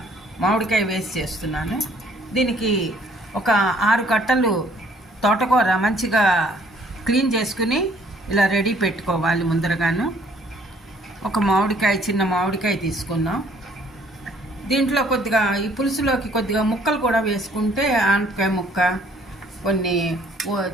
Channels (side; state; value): both; normal; correlation 0.61